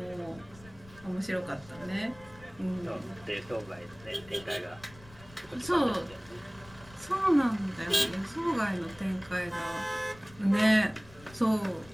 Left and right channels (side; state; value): left; noise; rumble, 22 dB below the sound